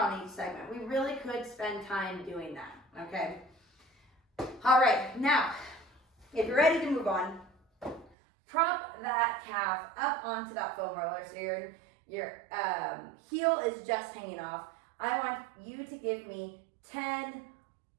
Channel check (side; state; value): left; drops out; at 8.1 s